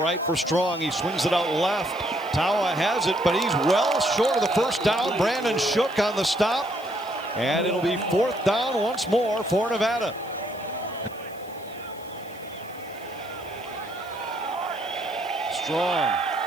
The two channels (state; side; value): noise; left; hiss, 23 dB below the sound